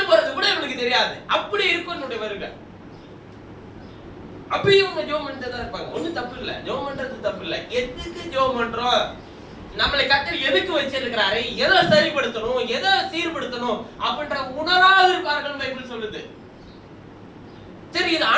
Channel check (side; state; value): both; identical; correlation 1.00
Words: போறது கூட இவனுக்கு தெரியாது, அப்படி இருக்கும் என்னுடைய வருகை. அப்பயும் இவங்க ஜெபம் பண்ணிட்டு தான் இருப்பாங்க. ஒண்ணும் தப்பு இல்ல, ஜெபம் பண்றது தப்பு இல்ல. எதுக்கு ஜெபம் பண்றோம்? நம்மளை கர்த்தர் எதுக்கு வச்சிருக்கிறாரு, எதை சரிப்படுத்தணும், எதை சீர்படுத்தணும் அப்படின்ற உணராக இருப்பார்கள் பைபிள் சொல்லுது. சரி, இது